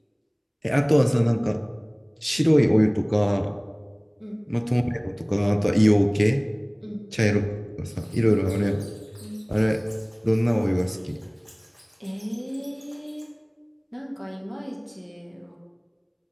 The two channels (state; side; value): identical; both; correlation 1.00